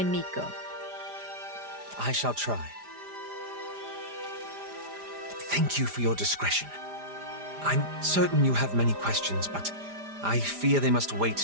I shall try. Thank you for your discretion. I'm certain you have many questions, but I fear they must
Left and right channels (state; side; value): late; left; 5.0 ms